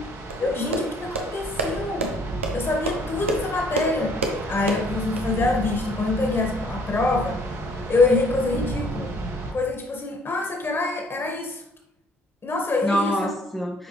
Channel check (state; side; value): normal; both; correlation 0.60